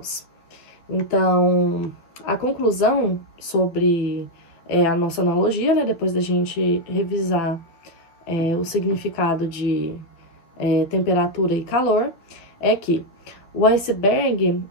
Então, a conclusão sobre a nossa analogia, né, depois da gente revisar o significado de temperatura e calor, é que o iceberg,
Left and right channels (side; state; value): right; late; 12 ms